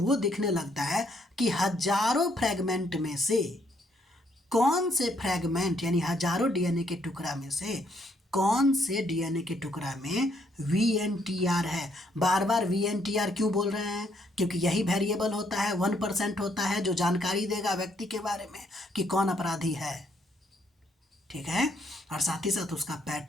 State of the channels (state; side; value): normal; both; correlation 0.71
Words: दिखने लगता है कि हजारों फ्रेगमेंट में से कौन से फ्रेगमेंट, यानी हजारों DNA के टुकड़ा में से कौन से DNA के टुकड़ा में VNTR है। बार बार VNTR क्यों बोल रहे हैं? क्योंकि यही वेरिएबल होता है, 1% होता है, जो जानकारी देगा व्यक्ति के बारे में कि कौन अपराधी है। ठीक है, और साथ ही साथ उसका